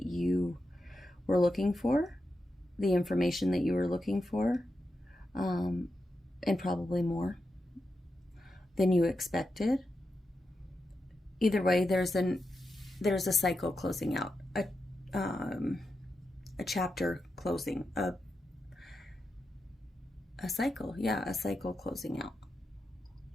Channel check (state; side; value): normal; both; correlation 0.88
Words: you were looking for, the information that you were looking for, and probably more than you expected. Either way, there's a cycle closing out, a chapter closing, a cycle, yeah, a cycle closing out.